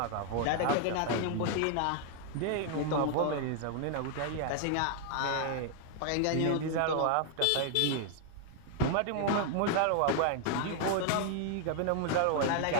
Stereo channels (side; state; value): both; different; correlation 0.00